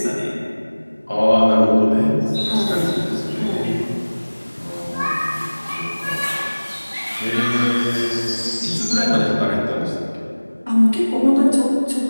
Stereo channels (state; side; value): inverted; both; correlation -1.00